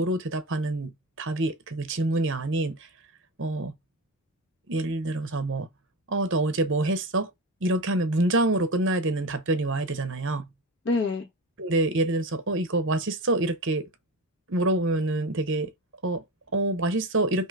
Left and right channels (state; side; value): normal; both; correlation 0.23